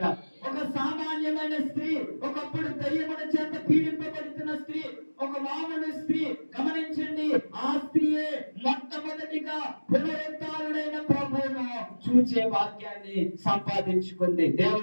ఒక సామాన్యమైన స్త్రీ, ఒకప్పుడు దయ్యముల చేత పీడింపబడుతున్న స్త్రీ, ఒక మామూలు స్త్రీ. గమనించండి, ఆ స్త్రీయే మొట్టమొదటిగా పునరుత్థానుడైన ప్రభువును చూచే భాగ్యాన్ని సంపాదించుకుంది.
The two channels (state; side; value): inverted; both; correlation -1.00